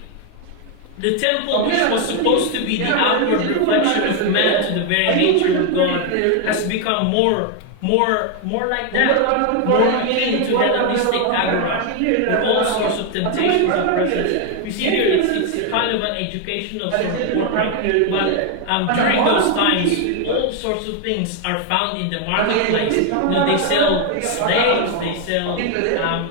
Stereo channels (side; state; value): both; different; correlation 0.01